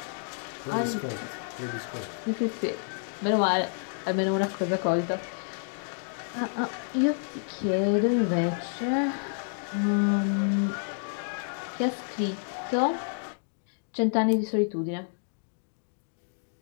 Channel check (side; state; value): right; silent; digital silence